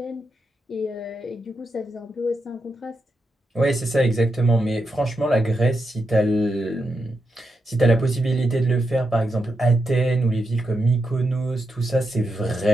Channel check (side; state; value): both; normal; correlation 0.85